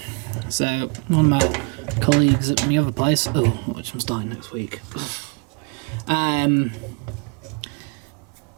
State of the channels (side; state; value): left; quieter; 35.3 dB